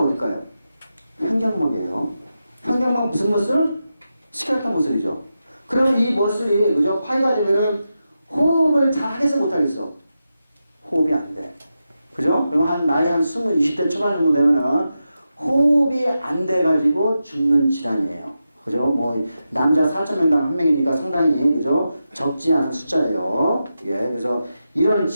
횡격막이에요. 횡격막 무슨 머슬? 스켈레톤 머슬이죠. 그러면 이 머슬이, 그죠? 파이가 되면은 호흡을 잘 하겠어, 못 하겠어? 호흡이 안 돼. 그죠? 그럼 나이 한 20대 초반 정도 되면은 호흡이 안 돼가지고 죽는 질환이에요. 그죠? 남자 4,000명당 1명이니까 상당히, 그죠? 적지 않은 숫자예요. 예, 그래서 이런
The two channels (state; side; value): inverted; both; correlation -0.90